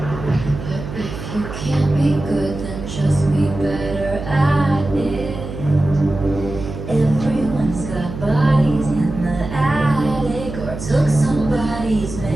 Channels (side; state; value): right; noise; hum, 8 dB below the sound